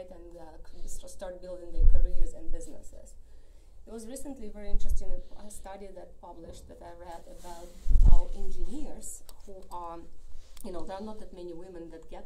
And start building their careers and businesses. There was recently a very interesting study that published that I read about how engineers who are, you know, there are not that many women that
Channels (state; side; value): identical; both; correlation 1.00